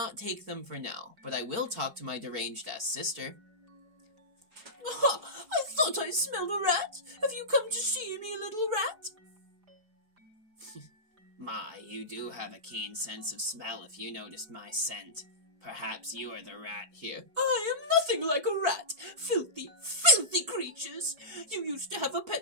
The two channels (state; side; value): late; left; 4.6 ms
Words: take them for now, but I will talk to my deranged-ass sister. Aha! I thought I smelled a rat. Have you come to see me, little rat? My, you do have a keen sense of smell if you noticed my scent. Perhaps you are the rat here. I am nothing like a rat. Filthy, filthy creatures. You used to have a